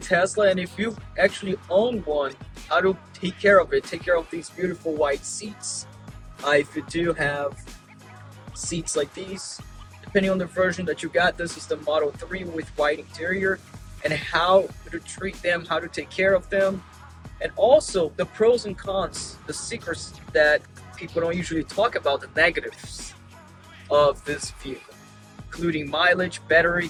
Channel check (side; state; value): both; identical; correlation 1.00